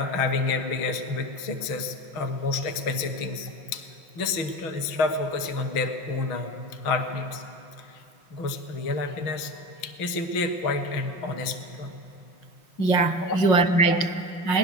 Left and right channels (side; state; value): right; late; 6.2 ms